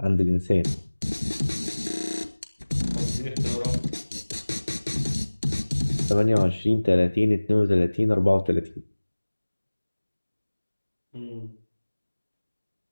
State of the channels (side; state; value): both; inverted; correlation -1.00